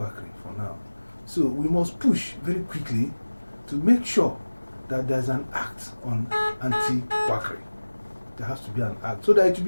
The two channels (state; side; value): inverted; both; correlation -1.00